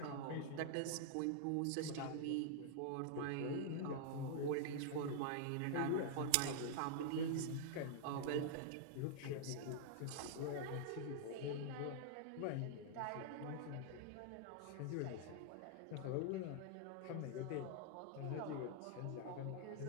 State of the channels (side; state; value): both; different; correlation -0.01